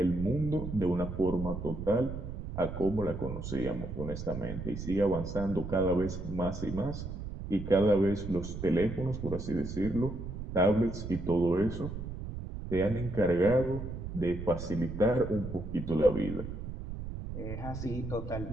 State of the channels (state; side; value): noise; right; rumble, 7 dB below the sound